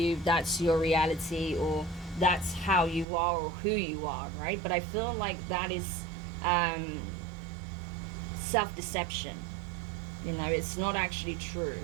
that's your reality, or that's how you are or who you are, right? But I feel like that is self-deception. It's not actually true.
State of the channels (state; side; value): drops out; left; at 3.1 s